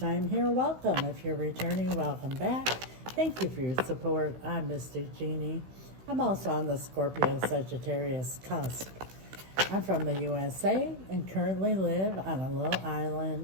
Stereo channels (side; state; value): left; late; 16 ms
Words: here, welcome. If you're returning, welcome back. Thank you for your support. I'm Mr. Jeanne. I'm also on the Scorpio-Sagittarius cusp. I'm from the USA and currently live on a little